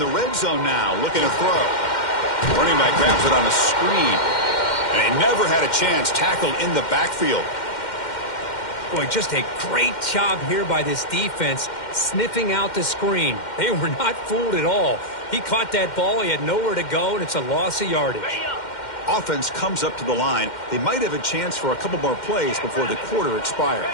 red zone now, looking to throw. Running back grabs it on a screen. And he never had a chance, tackled in the backfield. Boy, just a great job here by this defense, sniffing out the screen. They were not fooled at all. He caught that ball, he had nowhere to go, and it's a loss of yardage. Offense comes up to the line. They might have a chance for a couple more plays before the quarter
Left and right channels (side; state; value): right; late; 2.1 ms